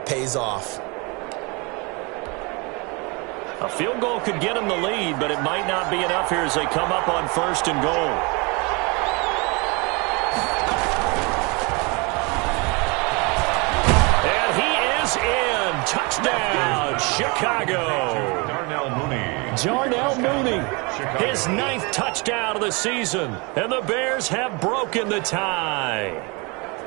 pays off. A field goal could get them the lead, but it might not be enough here as they come up on 1st and goal. And he is in. Touchdown, Chicago. Darnell Mooney, his 9th touchdown of the season. And the Bears have broken the tie.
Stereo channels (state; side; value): quieter; left; 29.2 dB